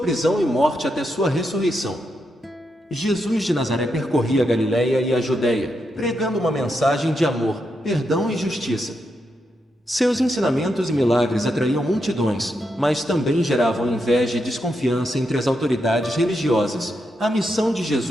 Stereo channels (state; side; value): normal; both; correlation 0.83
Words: e morte até sua ressurreição. Jesus de Nazaré percorria a Galiléia e a Judéia, pregando uma mensagem de amor, perdão e justiça. Seus ensinamentos e milagres atraíam multidões, mas também geravam inveja e desconfiança entre as autoridades religiosas. A missão de